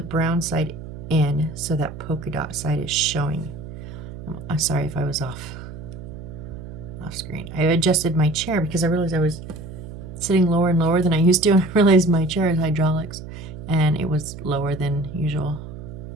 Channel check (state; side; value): noise; right; hum, 12 dB below the sound